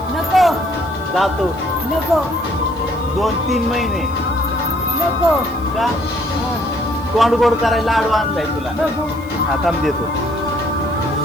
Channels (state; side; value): noise; left; hiss, 25 dB below the sound